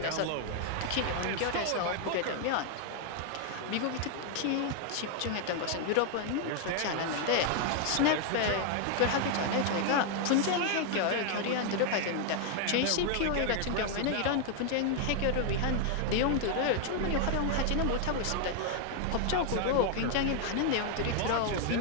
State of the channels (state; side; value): different; both; correlation 0.00